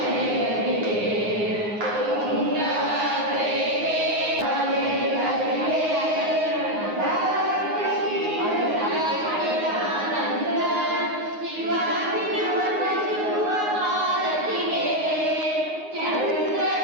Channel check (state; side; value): late; left; 9.6 ms